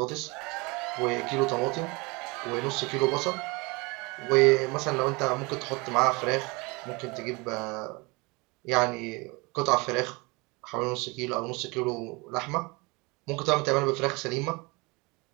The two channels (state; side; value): quieter; left; 26.6 dB